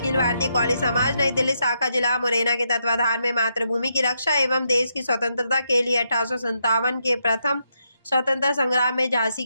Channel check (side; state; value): both; inverted; correlation -0.80